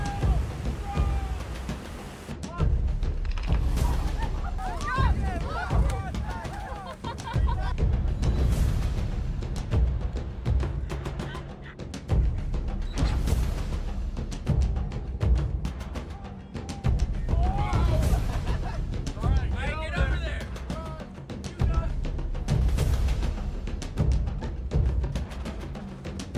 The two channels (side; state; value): both; identical; correlation 1.00